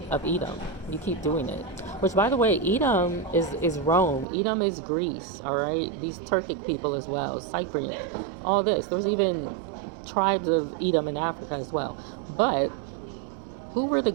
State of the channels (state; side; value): drops out; left; at 4.2 s